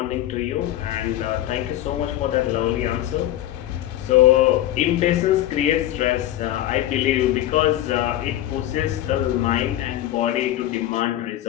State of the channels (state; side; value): quieter; right; 13.6 dB